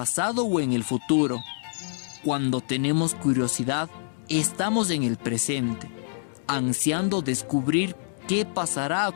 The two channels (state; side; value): silent; right; digital silence